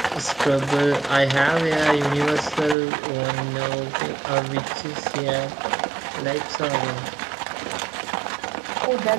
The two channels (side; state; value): left; drops out; at 2.8 s